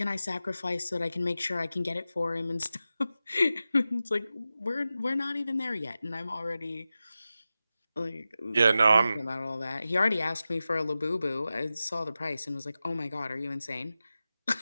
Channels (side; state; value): both; inverted; correlation -0.93